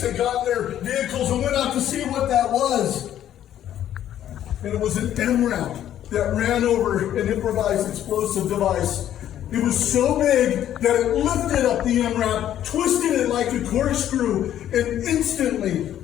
and got in their vehicles and went out to see what that was. And it was an MRAP that ran over an improvised explosive device. It was so big that it lifted up the MRAP, twisted it like a corkscrew, and instantly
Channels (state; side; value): quieter; right; 11.3 dB